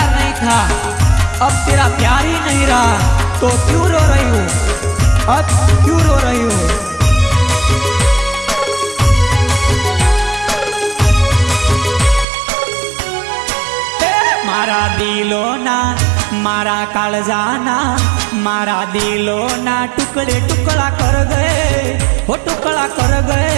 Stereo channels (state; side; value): drops out; left; at 12.2 s